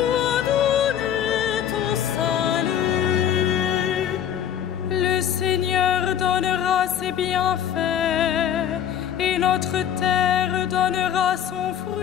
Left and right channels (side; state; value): right; quieter; 9.7 dB